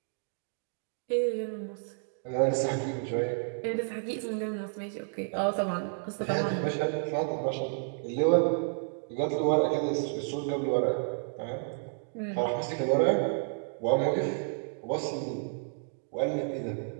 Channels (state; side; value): silent; left; digital silence